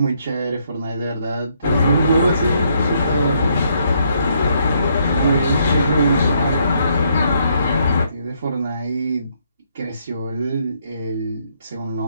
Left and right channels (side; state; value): both; inverted; correlation -0.72